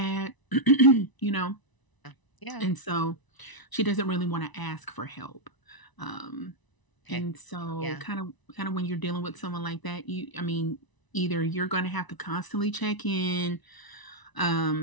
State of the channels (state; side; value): late; right; 1.0 ms